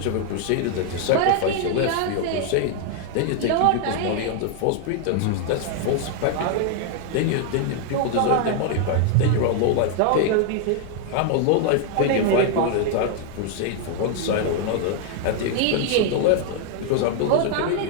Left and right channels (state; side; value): different; both; correlation 0.00